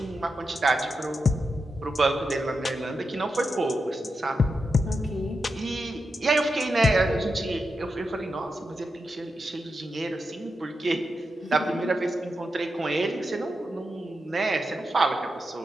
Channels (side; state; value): both; normal; correlation 0.88